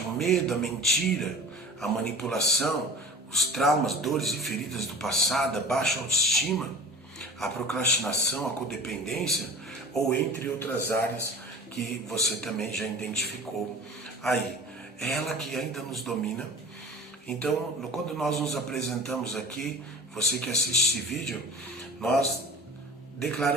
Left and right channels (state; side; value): normal; both; correlation 0.40